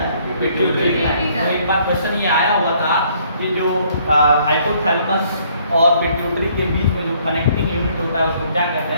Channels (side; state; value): both; inverted; correlation -0.64